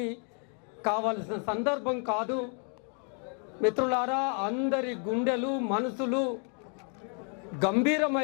కావలసిన సందర్భం కాదు. మిత్రులారా, అందరి గుండెలు మనసులు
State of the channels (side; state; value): right; quieter; 39.8 dB